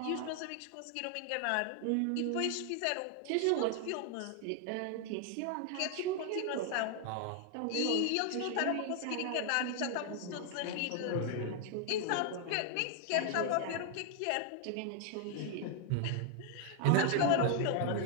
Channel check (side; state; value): both; different; correlation 0.00